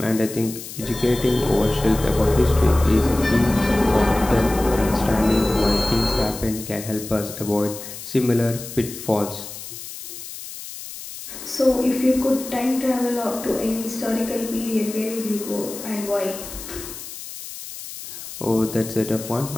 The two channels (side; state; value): left; noise; hiss, 12 dB below the sound